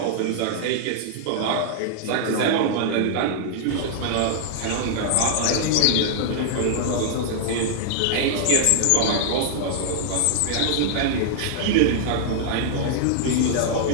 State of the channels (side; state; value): both; different; correlation -0.01